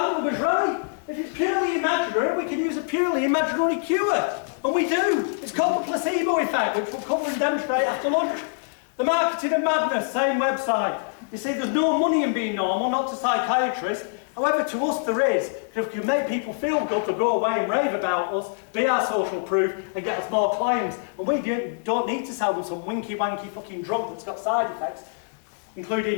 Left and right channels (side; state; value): right; silent; digital silence